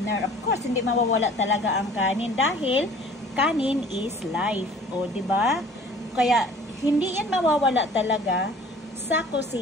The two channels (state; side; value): normal; both; correlation 0.49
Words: Of course, hindi mawawala talaga ang kanin dahil kanin is life. O, diba? Kaya, hindi yan mawawala talaga sa